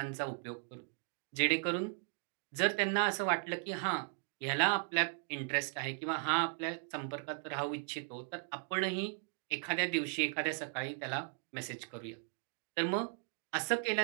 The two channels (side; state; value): left; silent; 53 dB below the other